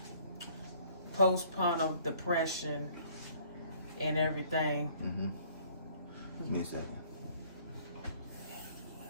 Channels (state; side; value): inverted; both; correlation -0.58